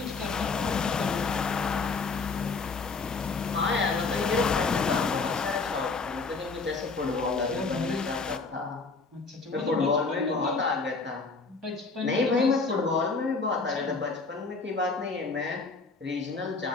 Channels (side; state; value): right; quieter; 4.2 dB